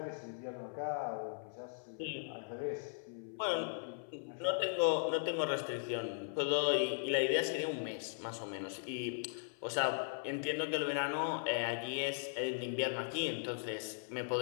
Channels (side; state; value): right; silent; 52 dB below the other